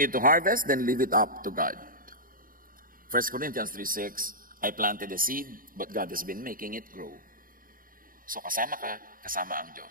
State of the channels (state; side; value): late; left; 0.41 ms